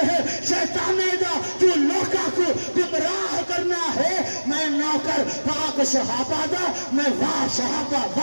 है शैताने दा, तू लोका को गुमराह करना है, मैं नौकर पाक सहाबा दा, मैं वाह सहाबा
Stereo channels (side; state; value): both; inverted; correlation -1.00